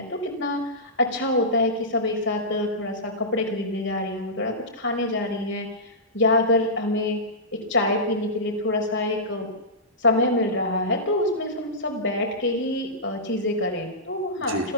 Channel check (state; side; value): normal; both; correlation -0.16